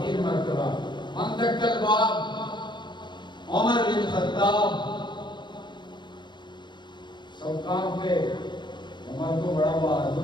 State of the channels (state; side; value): late; right; 0.22 ms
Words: مرتبہ. من دق الباب عمر بن خطاب. سب کام پہ عمر کو بڑا